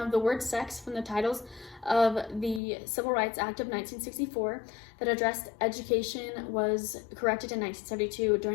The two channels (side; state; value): right; drops out; at 2.6 s